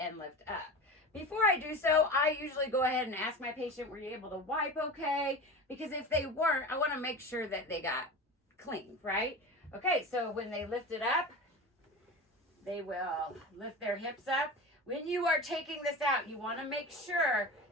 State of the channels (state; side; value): normal; both; correlation 0.30